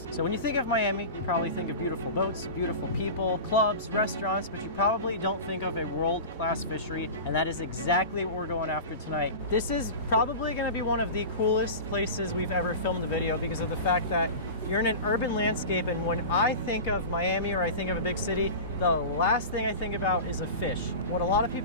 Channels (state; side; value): inverted; both; correlation -0.30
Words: So when you think of Miami, you probably think of beautiful boats, beautiful people, clubs, restaurants, but you probably don't think of a world-class fishery, and that is exactly what we're going after tonight. This is probably going to be one of the coolest places we've ever filmed a video because of the fact that you're in an urban landscape, and when I think of Miami or I think of a big city, the last thing I think about is a fish. What a lot of